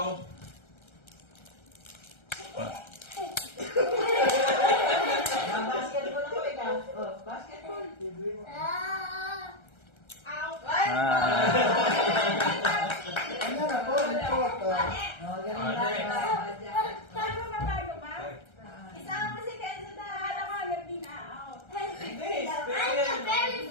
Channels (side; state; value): right; late; 1.3 ms